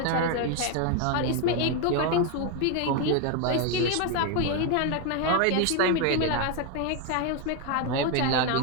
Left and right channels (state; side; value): different; both; correlation 0.01